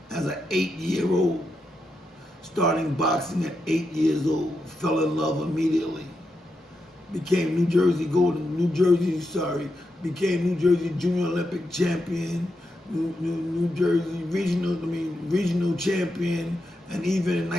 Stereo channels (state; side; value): normal; both; correlation 0.85